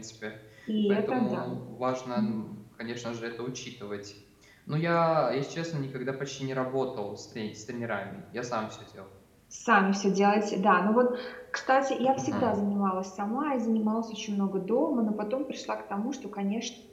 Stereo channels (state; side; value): identical; both; correlation 1.00